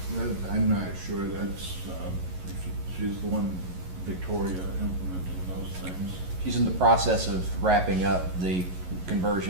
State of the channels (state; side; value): late; left; 11 ms